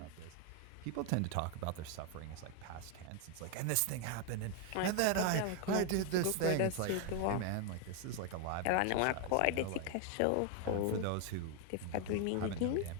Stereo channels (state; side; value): different; both; correlation 0.01